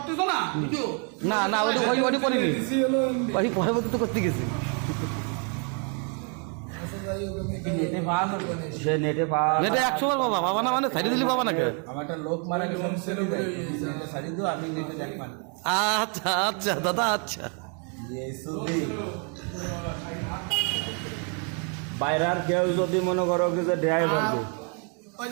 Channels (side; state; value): left; quieter; 39.1 dB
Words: না ভিডিও না না ওইটা করিনি দিছি হলো ওই পরবর্তী তো করতে গেছি সে নেটে পাওয়া এটা 100 বার বাবা বাবা না মানে ছাড়ি দিলি বাবা নাকি আচ্ছা আচ্ছা দাদা আচ্ছা বাইরের কেউ যদি মনে করো কি যে ড্রাইভার ওই